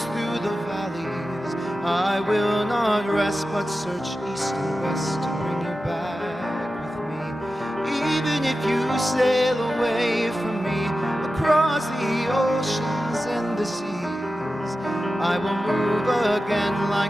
through the valleys, I will not rest but search east and west to bring you back with me. Even if you sail away from me across the oceans and the seas, I will move again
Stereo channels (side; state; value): both; normal; correlation 0.93